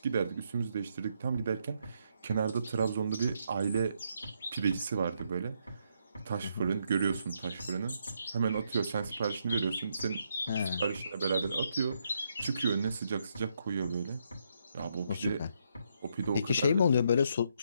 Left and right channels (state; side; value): inverted; both; correlation -0.76